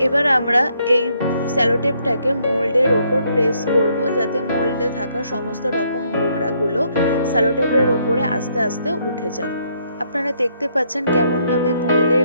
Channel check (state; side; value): inverted; both; correlation -0.71